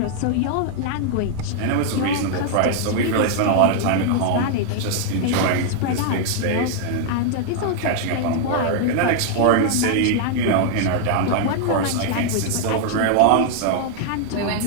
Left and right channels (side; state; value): both; different; correlation 0.00